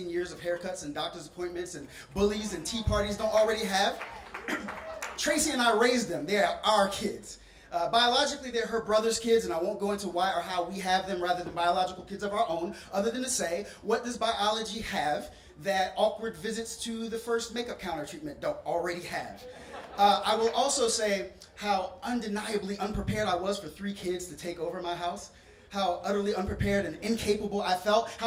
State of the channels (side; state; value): both; identical; correlation 1.00